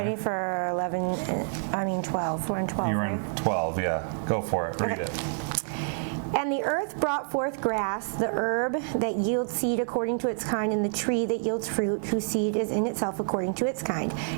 for 12? We're on 12, You're right? in 12, yeah. Go for it. Read it. And the earth brought forth grass, the herb that yields seed according to its kind, and the tree that yields fruit, whose seed is in itself according to its kind.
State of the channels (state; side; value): silent; left; digital silence